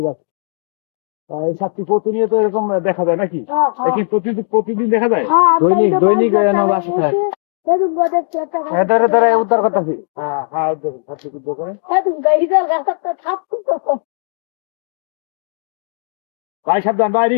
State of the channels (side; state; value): right; silent; digital silence